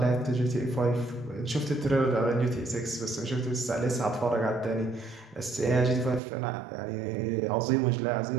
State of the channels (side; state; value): left; drops out; at 6.2 s